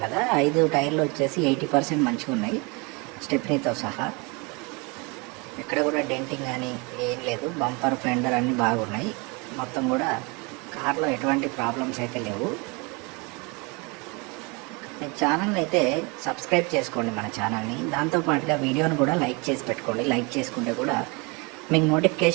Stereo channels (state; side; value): quieter; left; 29.3 dB